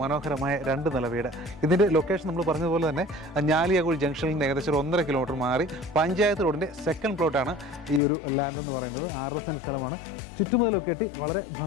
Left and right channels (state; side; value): drops out; right; at 8.0 s